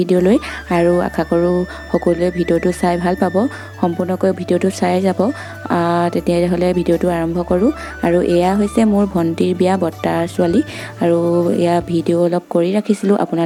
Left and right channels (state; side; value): identical; both; correlation 1.00